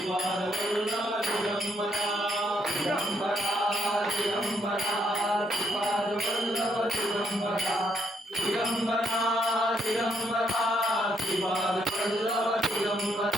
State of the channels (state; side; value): normal; both; correlation 0.73